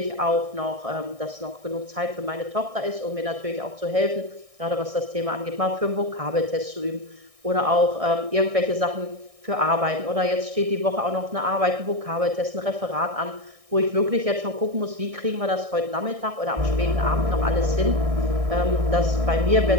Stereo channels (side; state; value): left; late; 1.6 ms